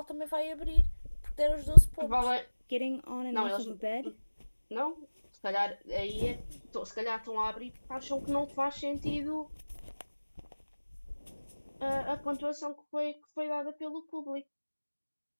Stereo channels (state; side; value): inverted; both; correlation -1.00